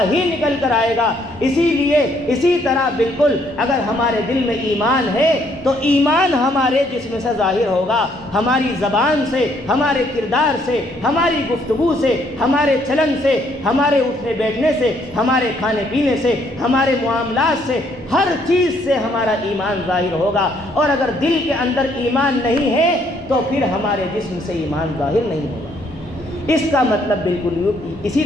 ہی نکل کر آئے گا۔ اسی طرح بالکل اگر ہمارے دل میں ایمان ہے تو ایمان ہمارے جسم سے ظاہر ہوگا، ہماری زبان سے، ہمارے کردار سے، ہماری گفتگو سے، ہمارے چلن سے، ہمارے اٹھنے بیٹھنے سے، ہمارے کھانے پینے سے، ہمارے معاملات سے، ہر چیز سے ہمارا ایمان ظاہر ہوگا۔ اور اگر دل کے اندر ایمان نہیں ہے تو پھر ہمارے جسم سے ایمان ظاہر نہیں ہوگا۔ اس کا مطلب بالکل اسی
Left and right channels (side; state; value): both; normal; correlation 0.68